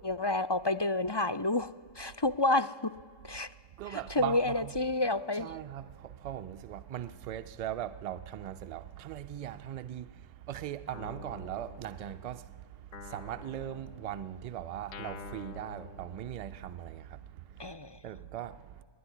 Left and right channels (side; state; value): right; late; 1.2 ms